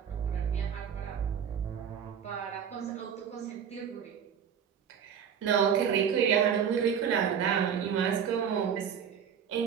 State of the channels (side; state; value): left; quieter; 7.8 dB